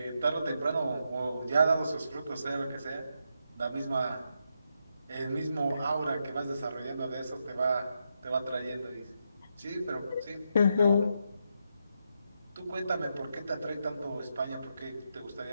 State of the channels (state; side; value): inverted; both; correlation -0.82